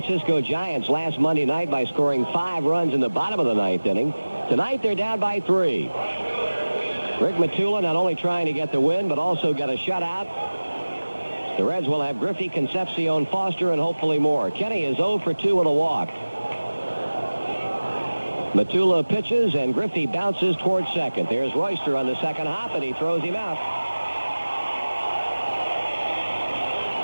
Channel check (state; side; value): inverted; both; correlation -1.00